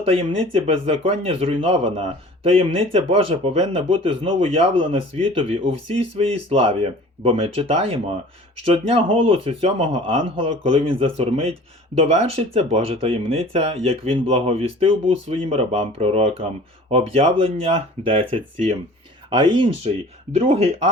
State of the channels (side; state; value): both; normal; correlation 0.45